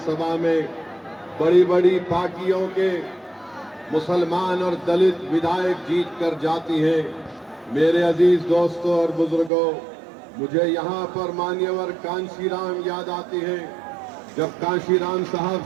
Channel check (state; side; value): drops out; left; at 9.5 s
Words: में बड़ी बड़ी पार्टियों के मुसलमान और दलित विधायक जीत कर जाती हैं। मेरे अजीज दोस्तों और बुजुर्गों, मुझे यहाँ पर मान्यवर कांशीराम याद आते हैं। जब कांशीराम साहब